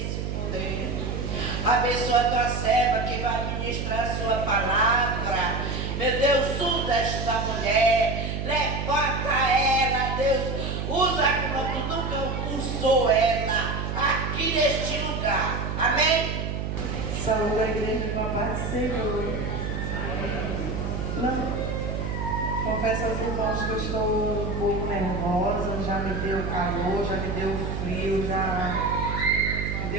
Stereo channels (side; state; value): right; noise; hum, 3 dB below the sound